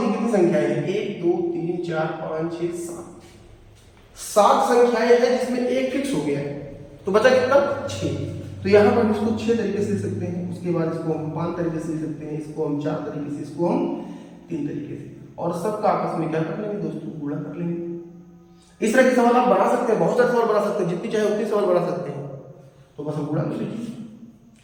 कितनी संख्याएं हैं, 1 2 3 4 5 6 7 संख्याएं हैं जिसमें एक फिक्स हो गया है। तो बचा कितना, 6। तो यहाँ पर हम इसको 6 तरीके से लिख सकते हैं, उसके बाद इसको हम 5 तरीके से लिख सकते हैं, इसको हम 4 तरीके से, इसको हम 3 तरीके से, और सबका आपस में क्या कर लेंगे दोस्तों, गुणा कर लेंगे। इस तरह के सवाल आप बना सकते हैं, बहुत सारे सवाल बना सकते हैं, जितनी चाहे उतनी सवाल बना सकते हैं। तो बस हम गुणा कर लीजिए,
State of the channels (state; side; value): identical; both; correlation 1.00